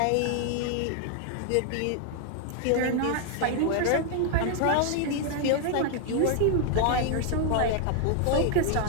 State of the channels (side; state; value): both; different; correlation 0.00